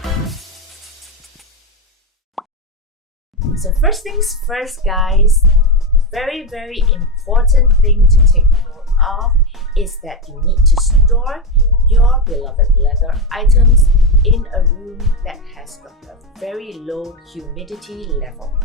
So first things first guys, very important thing to take note of is that you need to store your beloved leather items in a room that has got a very low humidity level.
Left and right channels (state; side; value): normal; both; correlation 0.11